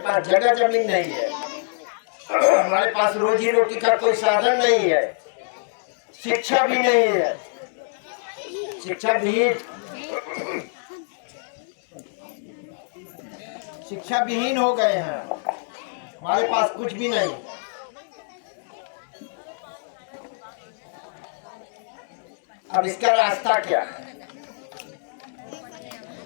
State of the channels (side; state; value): right; silent; digital silence